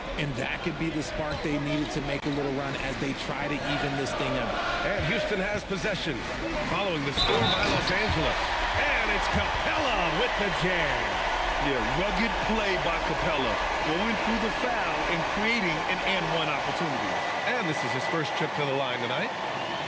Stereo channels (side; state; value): both; identical; correlation 1.00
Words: And that could be the spark they needed to make a little run as they try to even this thing up. And Houston has possession following the score by Los Angeles. And it's Capella with the jam. Yeah, rugged play by Capella, going through the foul and creating an and-one opportunity. And this is his first trip to the line tonight.